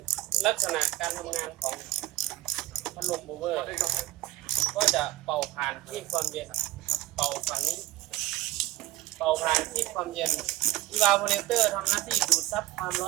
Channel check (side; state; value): left; quieter; 16.6 dB